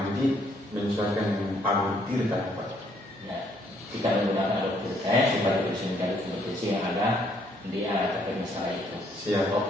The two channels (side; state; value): both; normal; correlation 0.68